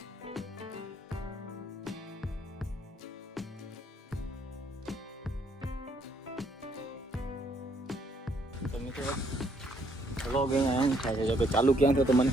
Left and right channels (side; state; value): both; normal; correlation 0.70